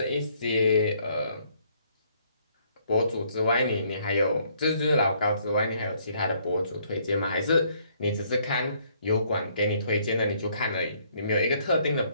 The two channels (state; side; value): inverted; both; correlation -0.66